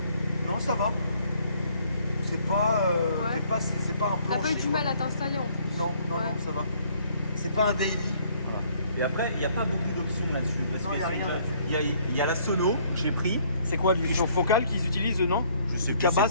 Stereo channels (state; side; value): inverted; both; correlation -0.63